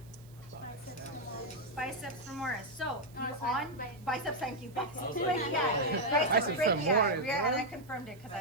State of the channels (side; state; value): right; noise; hiss, 27 dB below the sound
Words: Biceps femoris. So biceps. Thank you. Biceps brachialis. Yeah, and I confirmed it because